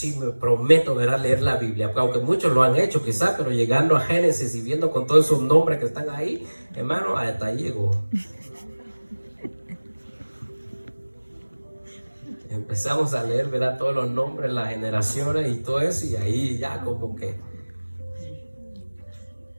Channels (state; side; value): inverted; both; correlation -1.00